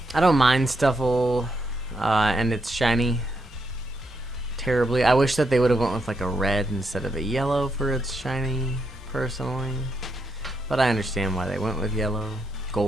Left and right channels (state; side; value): normal; both; correlation 0.80